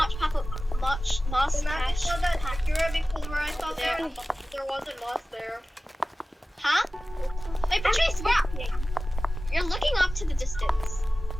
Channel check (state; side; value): normal; both; correlation 0.96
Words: patch. The map is patch. not that accurate because where I saw there wasn't moss there. Huh? Wait, Patrice, where? You're looking off to the distance.